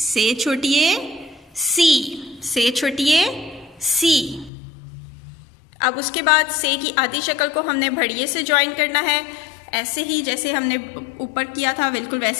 छोटी ए सी, से छोटी ए सी। अब उसके बाद से की आधी शक्ल को हमने भड़िए से ज्वाइन करना है। ऐसे ही जैसे हमने ऊपर किया था बिल्कुल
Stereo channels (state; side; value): drops out; right; at 4.5 s